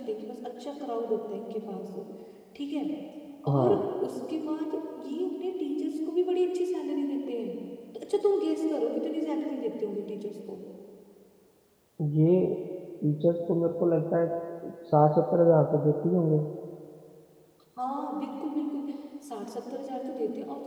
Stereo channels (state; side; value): identical; both; correlation 1.00